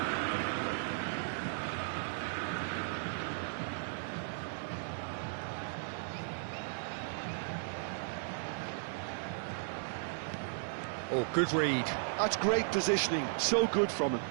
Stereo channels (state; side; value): silent; left; 54 dB below the other